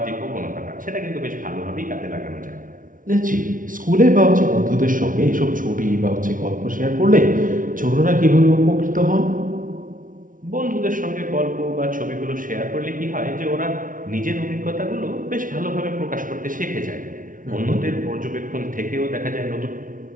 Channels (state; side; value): late; left; 0.39 ms